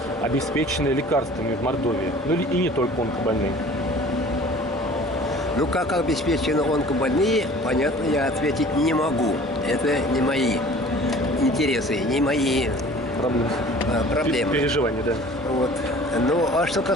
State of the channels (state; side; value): normal; both; correlation 0.47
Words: обеспечены лекарствами в Мордовии? Ну и не только онкобольные. Ну, как обеспечены онкобольные, понятно, я ответить не могу. Это не мои интересы, не мои проблемы. Переживания, да. Вот. Ну, а что